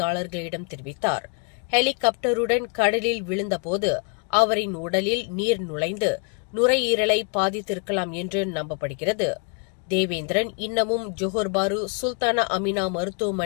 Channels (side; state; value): right; quieter; 36.3 dB